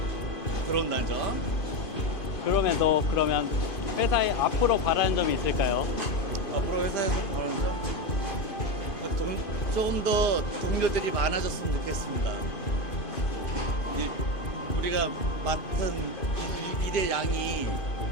들어온다죠. 그러면 회사에 앞으로 바라는 점이 있을까요? 앞으로 회사에서 바라는 점 조금 더 동료들이 많아졌으면 좋겠습니다. 우리가 맡은 일의 양이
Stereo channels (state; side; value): late; right; 2.5 ms